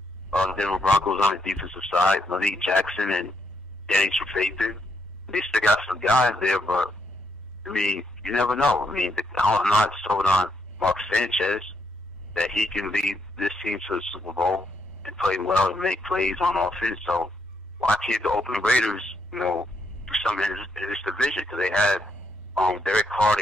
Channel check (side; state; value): both; normal; correlation 0.77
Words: Denver Broncos on the defensive side, Malik Jackson and Danny Trevathan. They still got some guys there, but I mean, you never know. I mean, I'm not sold on Mark Sanchez that he can lead this team to the Super Bowl and play well and make plays on offense. So why can't the Oakland Raiders, do something in this division? Because they had Derek Carr,